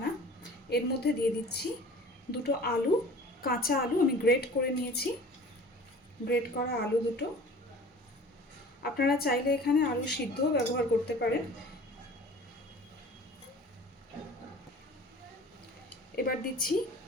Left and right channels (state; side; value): normal; both; correlation 0.44